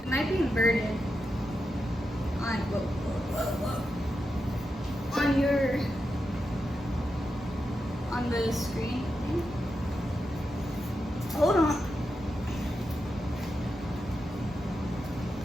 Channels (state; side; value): normal; both; correlation 0.87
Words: It might be inverted on on the screen. Hold on.